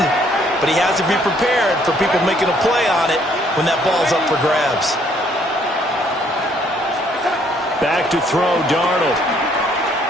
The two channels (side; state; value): both; normal; correlation 0.65